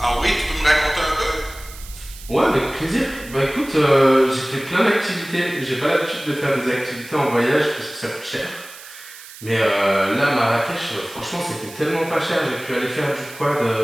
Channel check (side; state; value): right; noise; hiss, 17 dB below the sound